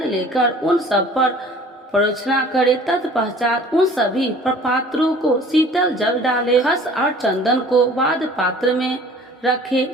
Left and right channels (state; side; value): normal; both; correlation 0.49